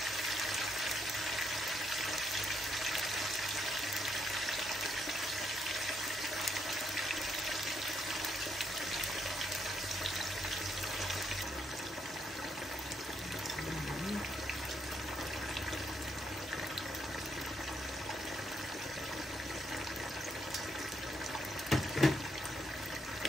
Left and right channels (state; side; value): normal; both; correlation 0.76